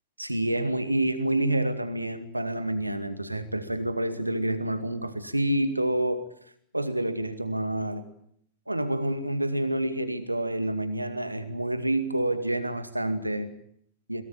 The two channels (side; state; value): both; inverted; correlation -0.88